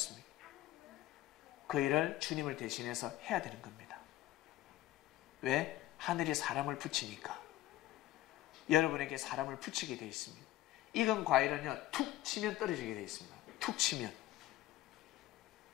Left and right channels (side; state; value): right; quieter; 15.1 dB